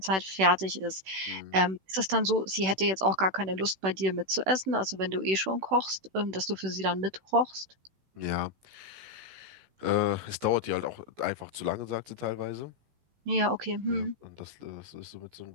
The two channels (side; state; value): left; late; 16 ms